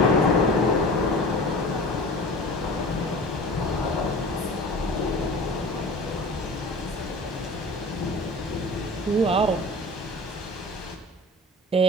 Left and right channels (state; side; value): normal; both; correlation 0.38